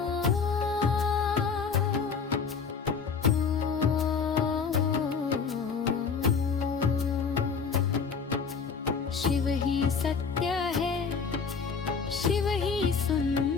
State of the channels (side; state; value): right; quieter; 5.7 dB